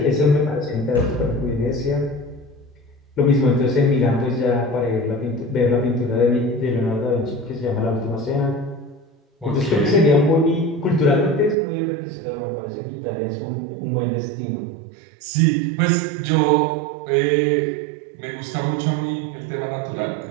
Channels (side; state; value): left; drops out; at 11.6 s